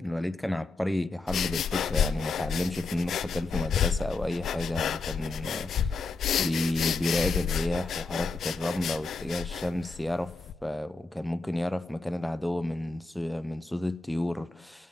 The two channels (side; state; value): right; quieter; 3.5 dB